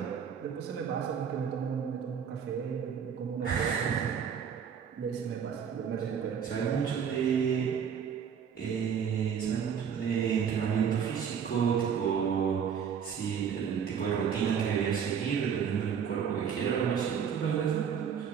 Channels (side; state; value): left; quieter; 7.5 dB